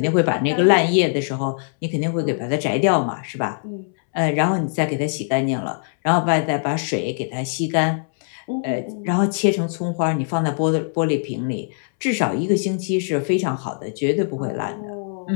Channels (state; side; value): silent; right; 64 dB below the other